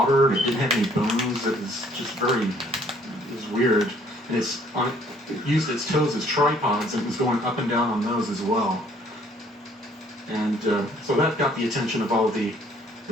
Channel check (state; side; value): normal; both; correlation 0.61